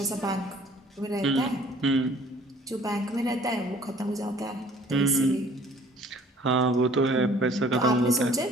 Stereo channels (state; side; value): normal; both; correlation 0.54